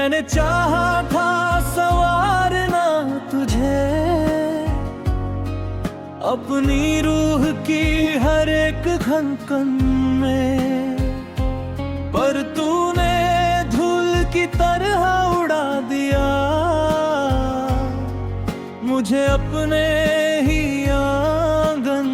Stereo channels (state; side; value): identical; both; correlation 1.00